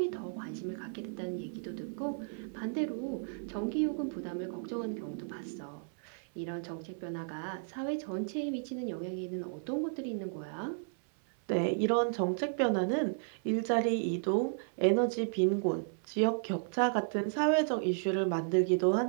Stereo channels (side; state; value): left; silent; 55 dB below the other